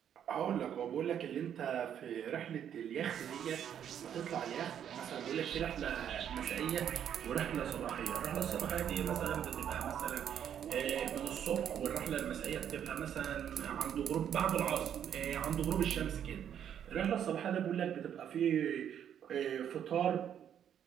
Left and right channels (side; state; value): left; quieter; 9.3 dB